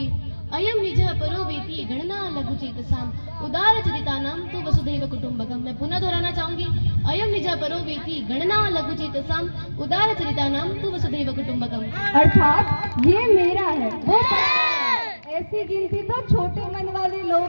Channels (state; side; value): inverted; both; correlation -1.00